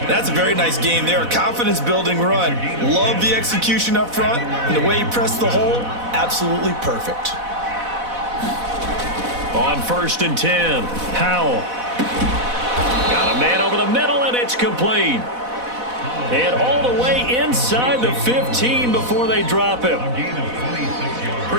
That's a very nice game there. A confidence-building run. Love the execution up front. And the way he pressed the hole, absolutely perfect. On 1st and 10, Howell. Got a man over the middle, and it's complete. And all the way inside the 15 before they drop him.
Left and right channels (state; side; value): late; left; 4.1 ms